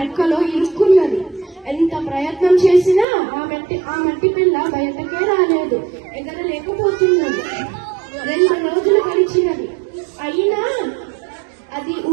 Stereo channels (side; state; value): left; drops out; at 3.1 s